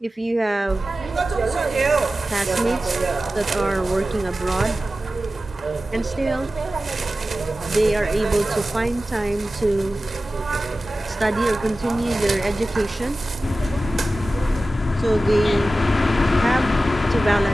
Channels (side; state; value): both; normal; correlation 0.95